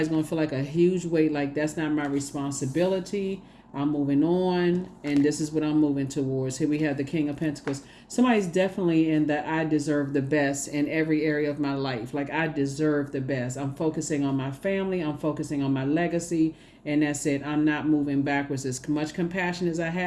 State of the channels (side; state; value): both; identical; correlation 1.00